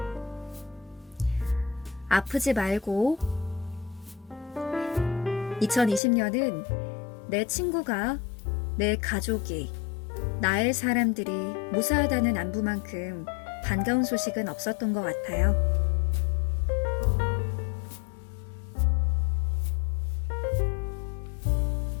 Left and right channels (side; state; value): right; drops out; at 6.0 s